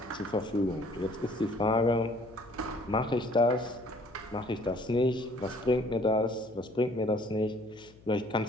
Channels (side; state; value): left; noise; hum, 25 dB below the sound